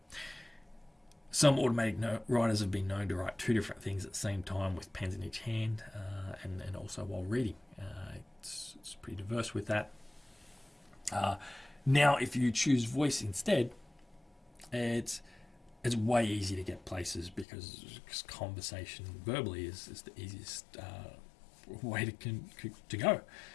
Some automatic writers have been known to write two different things at the same time with pens in each hand, and also while reading. It's pretty diverse with that. Now, if you choose voice instead, it's way easier to get places because conversation verbally is the easiest way to go,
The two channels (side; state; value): right; drops out; at 17.4 s